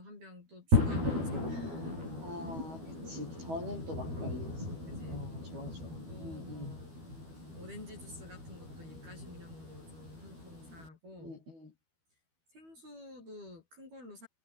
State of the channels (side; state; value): left; late; 12 ms